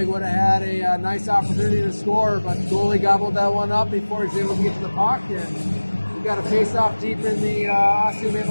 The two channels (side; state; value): both; inverted; correlation -1.00